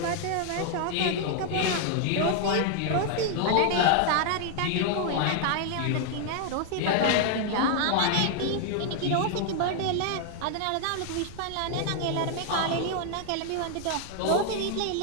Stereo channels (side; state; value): both; different; correlation 0.00